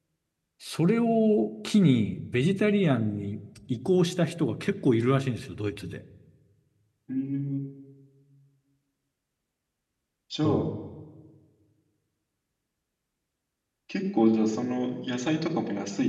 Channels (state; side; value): identical; both; correlation 1.00